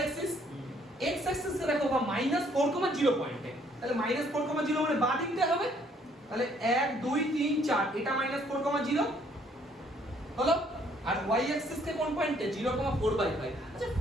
অ্যাক্সিস। x অ্যাক্সিস এ দেখো বা -4, 0 পয়েন্টে, তাহলে -4, 0 মানে বাঁ দিকটা হবে। তাহলে 1 2 3 4, এটা -4, 0 হলো। আর y অ্যাক্সিস কে কোন পয়েন্টে, 0,4/5। আচ্ছা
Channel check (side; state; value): both; normal; correlation 0.64